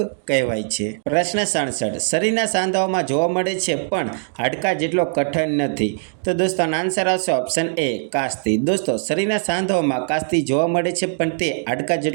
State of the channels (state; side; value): silent; left; 65 dB below the other